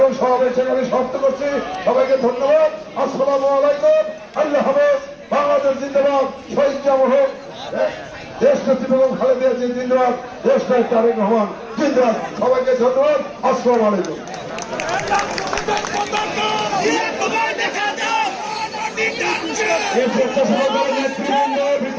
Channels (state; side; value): identical; both; correlation 1.00